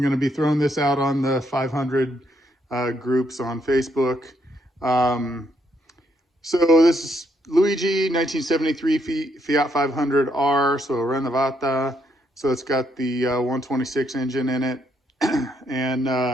going to be throwing this out on the 500 groups on Facebook. So this is Luigi, 1973 Fiat 500R, so Renovata. So it's got the 126 engine in it. And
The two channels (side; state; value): both; normal; correlation 0.75